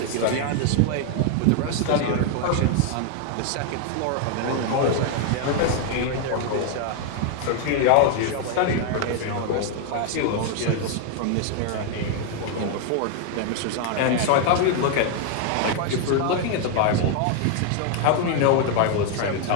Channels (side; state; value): both; different; correlation 0.00